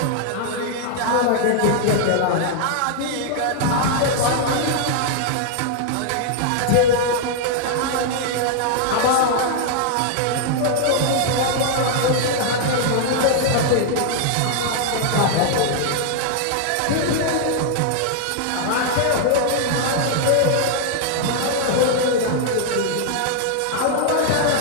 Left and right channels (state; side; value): different; both; correlation 0.00